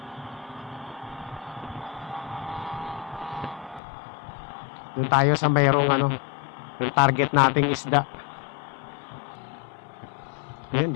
Doon tayo sa mayroong yung target nating isda. Ayan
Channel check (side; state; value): right; drops out; at 3.8 s